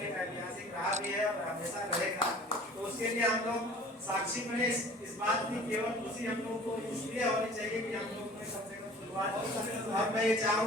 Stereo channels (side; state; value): both; normal; correlation 0.47